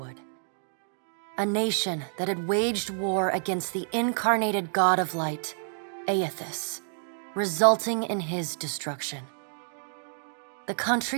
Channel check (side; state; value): left; silent; digital silence